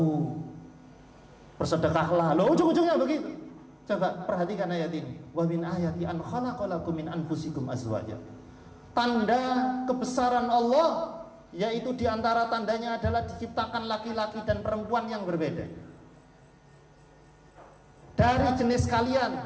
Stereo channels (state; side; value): identical; both; correlation 1.00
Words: bersedekahlah. Loh, ujung-ujungnya begitu. Coba perhatikan ayat ini. Wa min ayati an khalaqalakum min anfusikum azwaja. Tanda kebesaran Allah, yaitu diantara tandanya adalah diciptakan laki-laki dan perempuan yang berbeda dari jenis kalian.